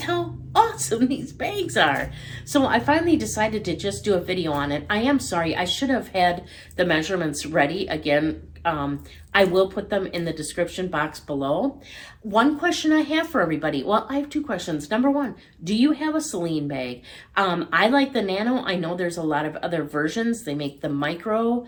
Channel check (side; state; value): both; identical; correlation 1.00